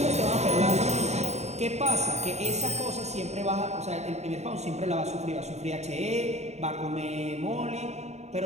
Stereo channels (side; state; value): left; late; 0.32 ms